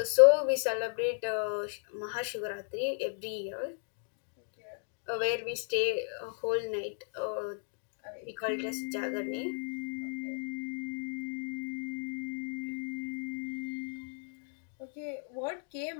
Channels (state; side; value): silent; right; digital silence